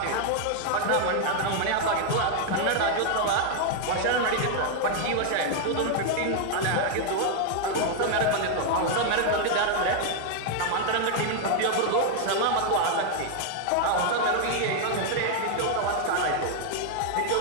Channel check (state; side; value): different; both; correlation 0.00